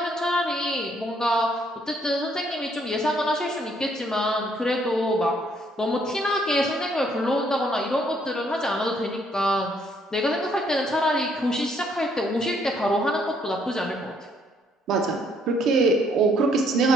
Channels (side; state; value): both; normal; correlation 0.68